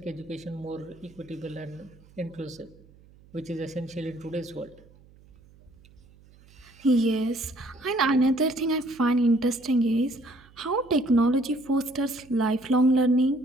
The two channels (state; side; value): noise; right; hum, 26 dB below the sound